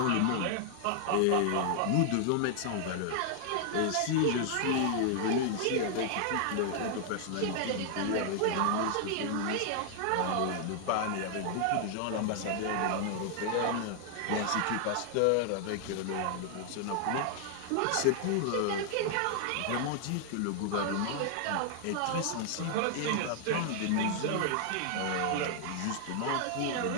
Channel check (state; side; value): different; both; correlation 0.00